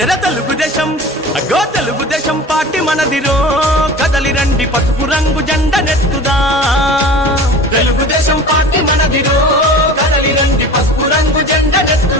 తెలుగుదేశం అగో తెలుగుదేశం పార్టీ మనదిరో కదలి రండి పసుపు రంగు జెండ నెత్తుదా తెలుగుదేశం పార్టీ మనదిరో కదలి రండి పసుపు రంగు జెండ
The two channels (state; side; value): normal; both; correlation 0.38